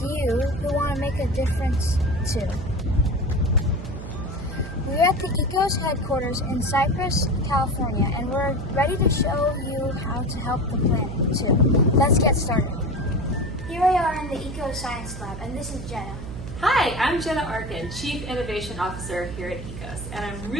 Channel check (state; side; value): noise; right; hum, 9 dB below the sound